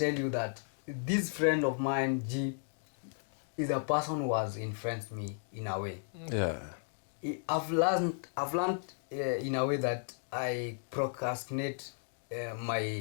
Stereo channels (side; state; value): right; silent; digital silence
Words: you that this friend of mine, G, is a person who has influenced me in a way. Yeah. I've learned in a way that I procrastinate